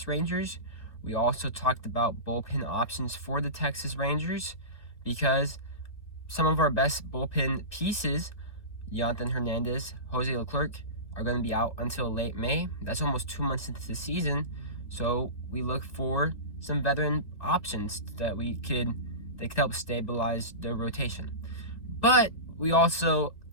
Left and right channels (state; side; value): late; right; 1.6 ms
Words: Rangers. We also talked about bullpen options for the Texas Rangers because some of our best bullpen pieces, Yonny Hernández, Jose Leclerc, are going to be out until late May. That's almost 2 months into the season. So we look for some veteran options that could help stabilize the rotation. But we also